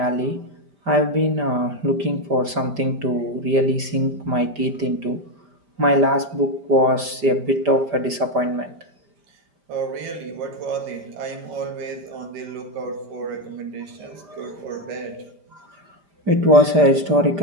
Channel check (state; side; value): late; left; 5.0 ms